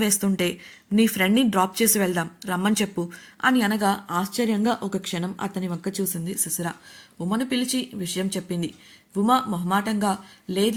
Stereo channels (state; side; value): identical; both; correlation 1.00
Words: వేస్తుంటే నీ ఫ్రెండ్ని డ్రాప్ చేసి వెళ్దాం, రమ్మని చెప్పు అని అనగా ఆశ్చర్యంగా ఒక క్షణం అతని వంక చూసింది శిశిర. ఉమను పిలిచి విషయం చెప్పింది. ఉమ మొహమాటంగా